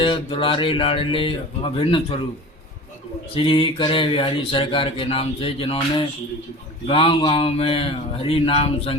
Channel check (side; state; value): both; normal; correlation 0.36